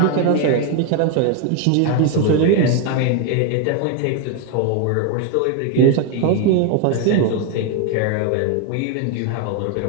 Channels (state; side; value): different; both; correlation 0.01